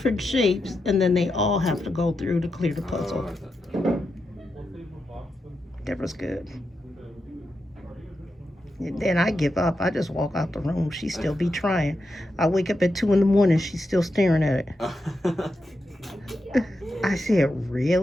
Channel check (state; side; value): normal; both; correlation 0.87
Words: shapes and then they all have to go through to clear the puzzle. That was good. And then I give up. I just walk out the room. She still be trying. I wake up at 2 a.m. She's still staring at it. I said,